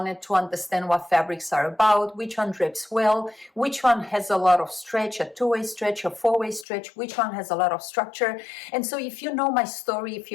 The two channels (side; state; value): right; drops out; at 6.7 s